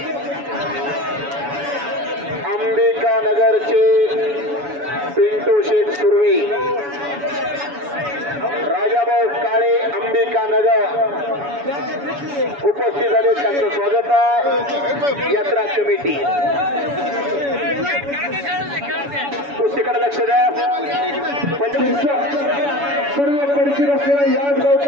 अंबिका नगरचे पिंटू शेठ सुर्वे, राजाभाऊ काळे, अंबिका नगर उपस्थित झाले. त्यांचं स्वागत आहे. यात्रा कमिटी कुस्तीकडे लक्ष द्या. सर्व परिचित असलेला याच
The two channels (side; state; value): left; late; 7.1 ms